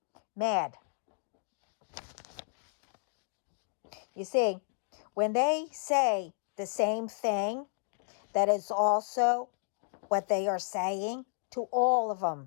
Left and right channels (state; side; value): silent; right; digital silence